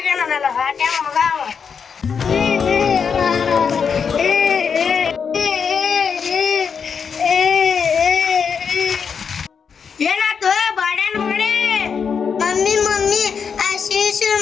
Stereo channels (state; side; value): quieter; right; 6.4 dB